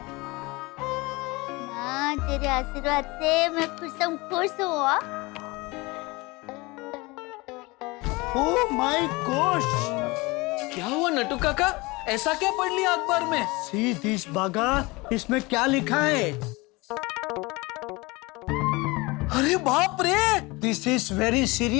माँ तेरे आशीर्वाद से मैं खुश हूँ। ओह माय गॉश, क्या हुआ नटू काका, ऐसा क्या पढ़ लिया अखबार में? सी दिस बागा, इसमें क्या लिखा है? अरे बाप रे, दिस इज वेरी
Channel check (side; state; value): right; quieter; 24.0 dB